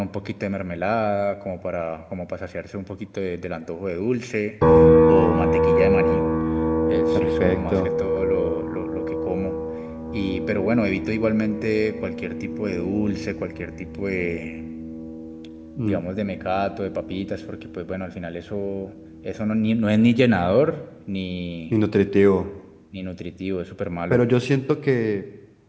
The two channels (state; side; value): identical; both; correlation 1.00